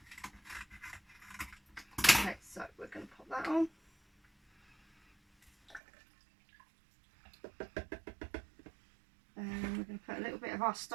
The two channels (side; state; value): left; drops out; at 5.8 s